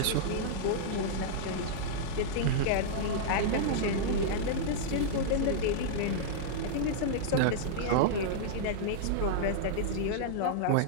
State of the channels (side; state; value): both; different; correlation -0.02